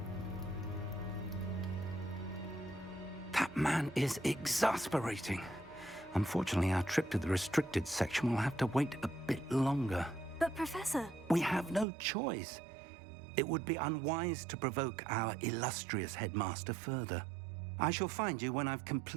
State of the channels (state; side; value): drops out; left; at 11.9 s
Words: That man is exasperating. Unfortunately, our trip to the restricted section will have to wait a bit longer. But, Professor... We have no choice. It would be unwise to provoke our illustrious headmaster further. I shall find you when I've